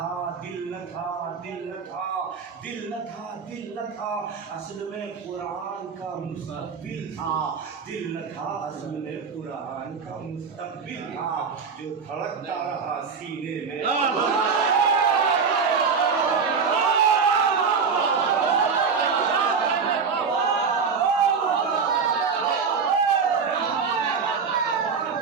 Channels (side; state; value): left; quieter; 5.7 dB